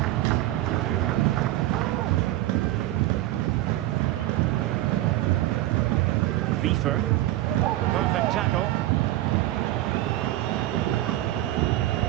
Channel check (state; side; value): quieter; left; 15.6 dB